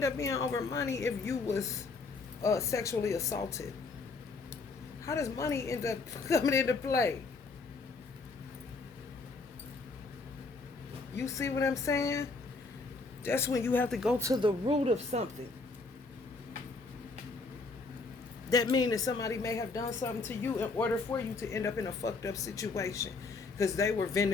up being over money if you was sexually assaulted? How does money end up coming into play? You see what I'm saying? That's when you have to go to the root of something. That means that somebody may have done something to you in order for you to end up in a fucked up situation. Because they were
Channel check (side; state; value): right; quieter; 3.9 dB